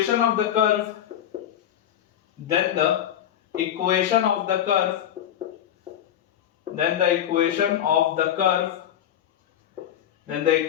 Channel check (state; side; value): quieter; right; 10.7 dB